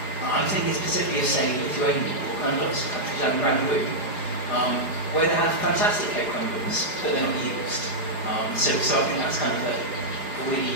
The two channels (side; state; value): right; late; 4.9 ms